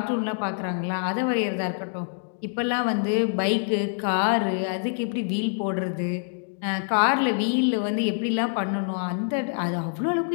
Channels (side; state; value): right; silent; digital silence